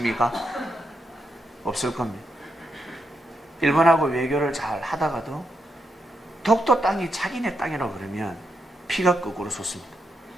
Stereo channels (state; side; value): normal; both; correlation 0.82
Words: 없을 겁니다. 일본하고 외교를 잘 하다가도 독도 땅이 자기네 땅이라고 그러면 피가 거꾸로 솟습니다.